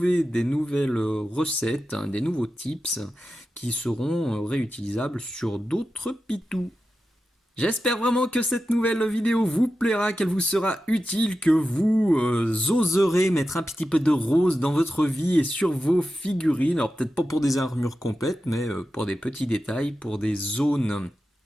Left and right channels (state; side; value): normal; both; correlation 0.92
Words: des nouvelles recettes, hein, des nouveaux tips qui seront réutilisables sur d'autres pitous. J'espère vraiment que cette nouvelle vidéo vous plaira, qu'elle vous sera utile, que vous oserez mettre un petit peu de rose dans votre vie et sur vos figurines. Alors peut-être pas pour des armures complètes, mais pour des petits détails, pour des zones